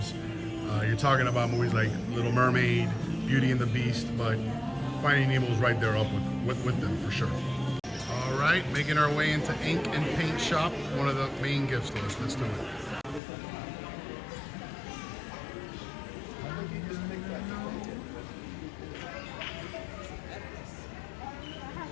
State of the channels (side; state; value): right; drops out; at 13.2 s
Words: You're talking about movies like Little Mermaid, Beauty and the Beast, but Finding Nemo is right there up with them for sure. All right, making our way into Ink and Paint Shop, one of the main gift stores. Let's do it.